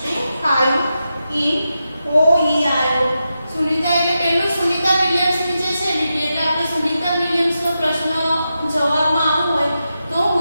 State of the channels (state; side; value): inverted; both; correlation -0.88